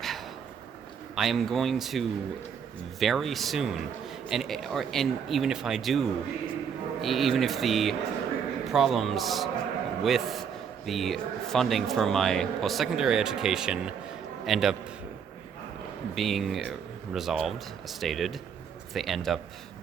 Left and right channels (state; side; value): quieter; left; 7.2 dB